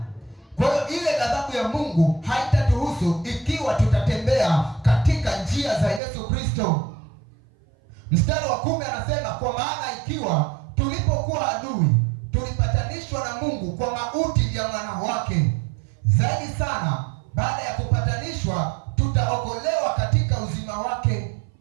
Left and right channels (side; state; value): left; drops out; at 6.0 s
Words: Kwa hiyo ile ghadhabu ya Mungu haitatuhusu ikiwa tutatembea katika njia za Yesu Kristo. Mstari wa 10 anasema, kwa maana ikiwa tulipokuwa adui tulipatanishwa na Mungu kwa mauti ya mwana wake, zaidi sana baada ya kupatanishwa tutaokolewa katika uzima wake.